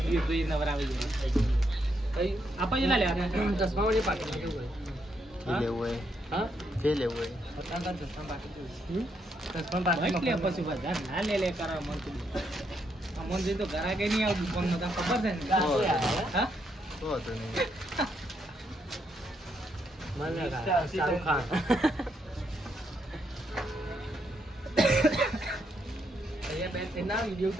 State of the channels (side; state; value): both; normal; correlation 0.77